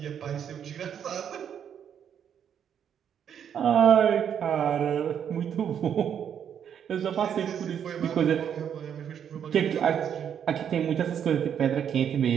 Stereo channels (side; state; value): left; quieter; 8.6 dB